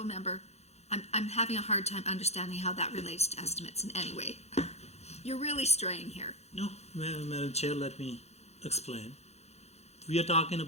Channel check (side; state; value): right; late; 0.31 ms